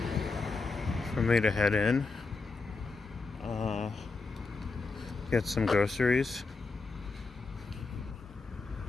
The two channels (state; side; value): quieter; right; 4.1 dB